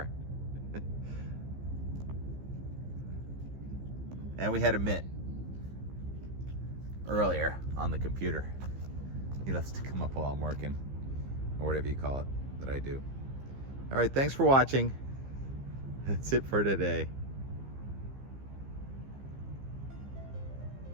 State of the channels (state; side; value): late; left; 15 ms